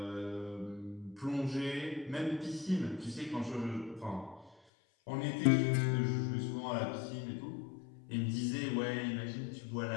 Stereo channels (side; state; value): right; drops out; at 4.5 s